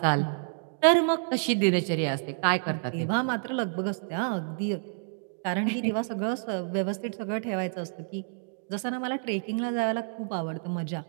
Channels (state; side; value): silent; left; digital silence